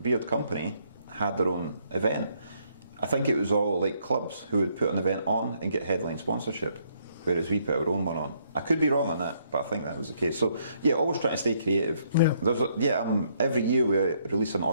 company had their own event. I think it was all like clubs who would put an event on and get headline sponsorship, whereas we put our own one on. I could be wrong on that, but I think that was the case. So yeah, always trying to stay creative. Every year we release an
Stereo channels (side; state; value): both; inverted; correlation -0.70